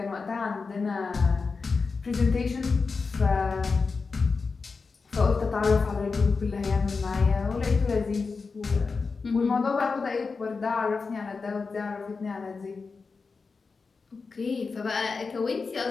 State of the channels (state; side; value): quieter; right; 4.6 dB